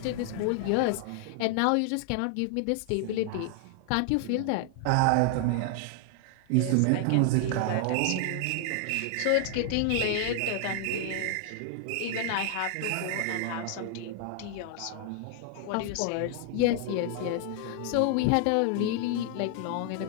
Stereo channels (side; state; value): both; different; correlation 0.00